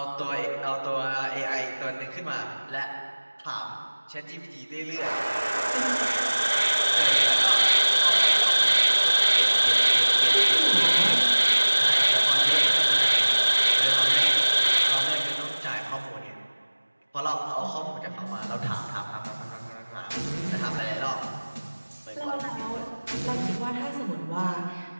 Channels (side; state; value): both; inverted; correlation -1.00